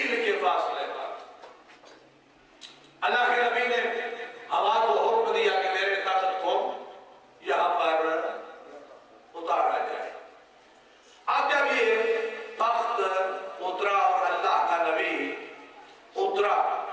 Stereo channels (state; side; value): identical; both; correlation 1.00